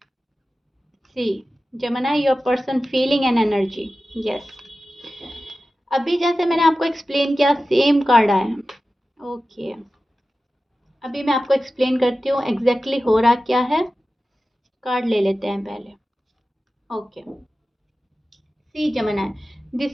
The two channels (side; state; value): both; normal; correlation 0.94